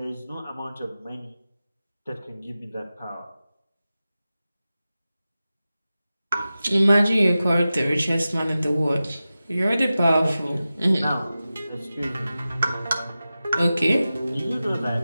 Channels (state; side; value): inverted; both; correlation -0.94